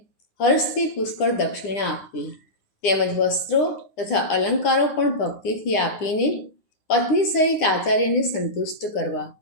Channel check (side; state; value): right; late; 9.6 ms